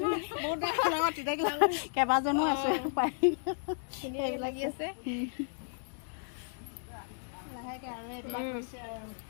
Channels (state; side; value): silent; right; digital silence